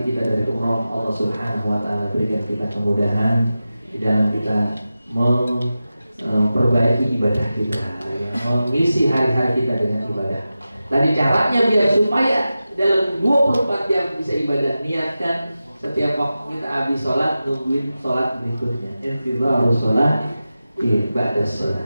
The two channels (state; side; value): inverted; both; correlation -0.94